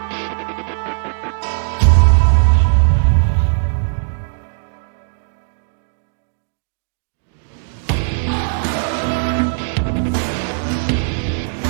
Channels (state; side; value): silent; left; digital silence